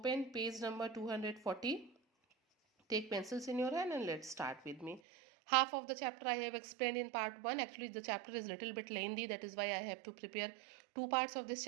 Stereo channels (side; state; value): left; drops out; at 5.0 s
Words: page number 240. Take pencils in your hand and let's start with me. Half of the chapter I have explained in part 1. Actually, the chapter is a little bit lengthy. That is why I have to prepare 2 parts of this